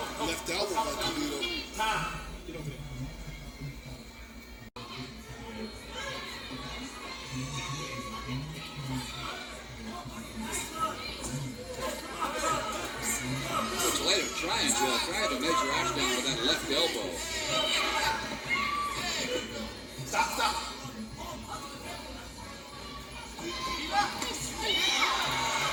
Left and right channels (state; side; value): identical; both; correlation 1.00